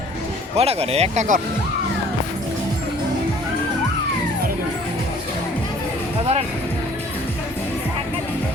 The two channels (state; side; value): normal; both; correlation 0.54